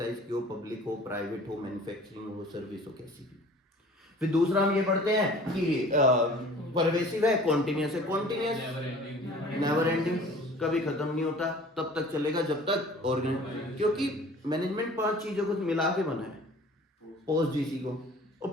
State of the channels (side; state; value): both; normal; correlation 0.46